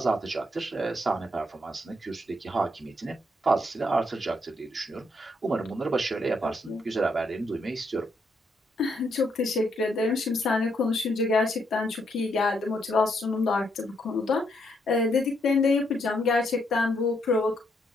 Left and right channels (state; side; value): normal; both; correlation 0.75